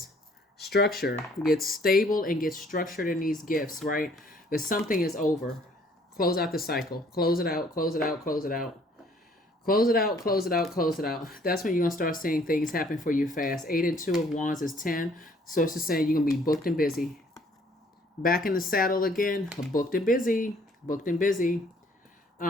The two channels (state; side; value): normal; both; correlation 0.60